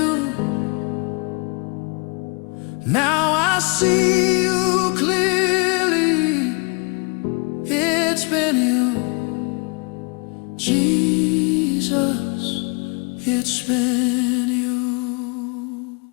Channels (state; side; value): quieter; right; 32.4 dB